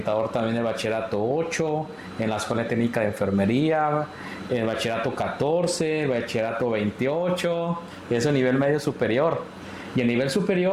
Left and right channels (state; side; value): identical; both; correlation 1.00